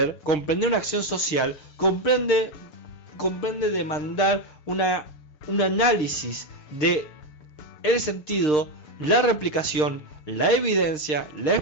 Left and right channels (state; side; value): late; right; 6.6 ms